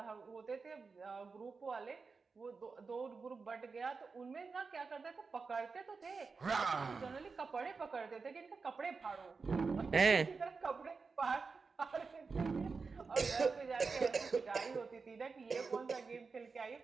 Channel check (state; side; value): quieter; left; 4.7 dB